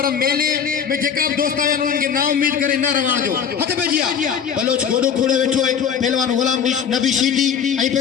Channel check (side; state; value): right; quieter; 7.5 dB